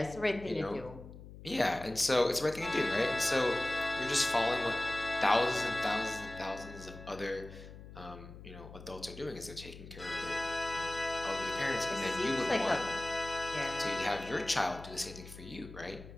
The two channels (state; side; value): noise; left; hum, 15 dB below the sound